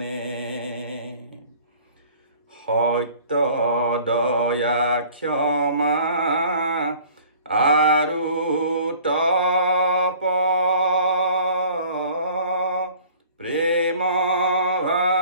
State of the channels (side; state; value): both; inverted; correlation -0.50